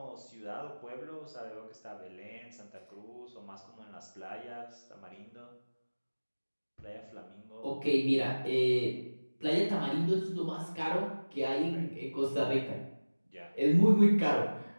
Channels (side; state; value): both; inverted; correlation -1.00